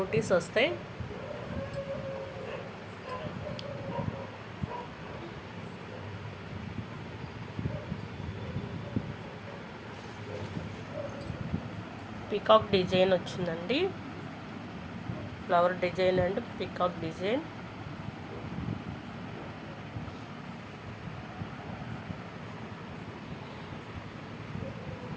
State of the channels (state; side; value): identical; both; correlation 1.00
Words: వస్తాయి. పికాక్ డిజైన్ వచ్చిందండి. Flower design and peacock design.